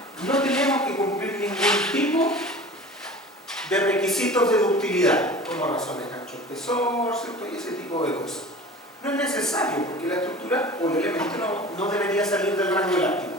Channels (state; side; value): normal; both; correlation 0.39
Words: no tenemos que cumplir ningún tipo de requisitos de ductilidad, como razones ancho-espesor, ¿cierto? Y ese tipo de cosas. No es necesario, porque la estructura o el elemento no debería salir del rango elástico.